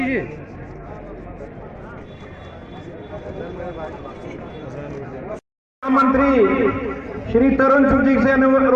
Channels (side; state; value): both; identical; correlation 1.00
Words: जी, मंत्री श्री तरुण चुग जी से